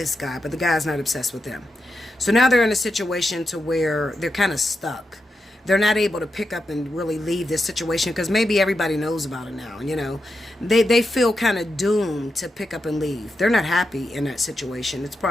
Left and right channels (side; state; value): both; normal; correlation 0.87